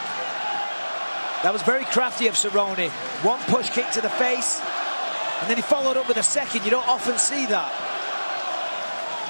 That was very crafty of Cerrone. One push kick to the face, and then he followed up with a second. You don't often see that.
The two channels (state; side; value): inverted; both; correlation -1.00